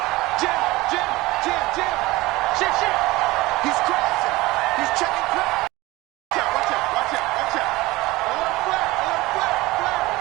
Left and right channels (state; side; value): quieter; left; 20.2 dB